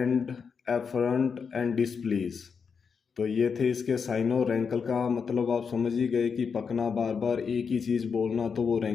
efferent and displease. तो ये थे इसके साइनो। रैंकल का मतलब आप समझ ही गए कि पकना, बार बार एक ही चीज़ बोलना, तो वो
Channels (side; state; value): right; quieter; 6.0 dB